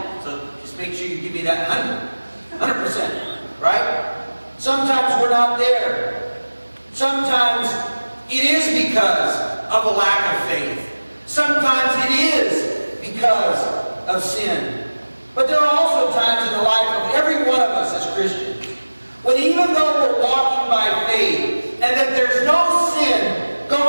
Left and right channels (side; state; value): both; inverted; correlation -1.00